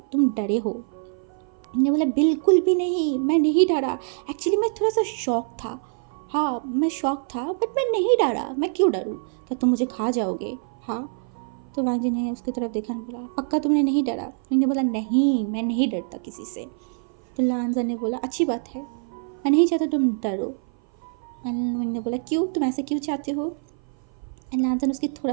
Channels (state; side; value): silent; left; 56 dB below the other